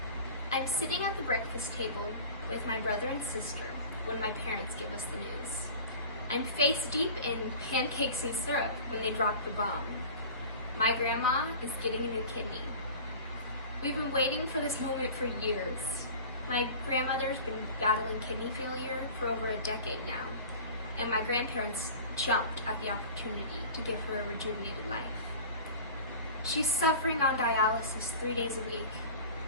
I'm sitting at the breakfast table with my brother and sister when my parents give us the news. I'm face deep in pancakes and syrup when they drop the bomb. My grandma is getting a new kidney. We've been waiting for this moment for years. My grandmother's been battling kidney failure for over a decade now, and my grandparents jumped at the opportunity to give her a rejuvenated life. She's suffering on dialysis 3 days a week.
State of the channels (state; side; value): inverted; both; correlation -0.39